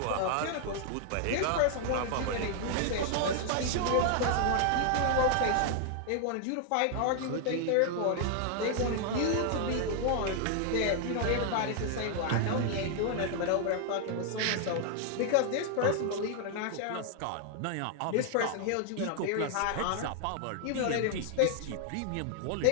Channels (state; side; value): different; both; correlation 0.00